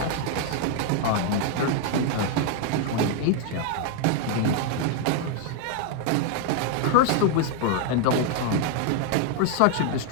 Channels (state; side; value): different; both; correlation 0.00